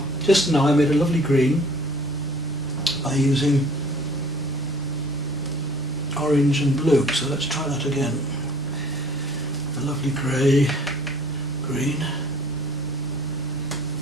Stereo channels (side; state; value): both; normal; correlation 0.53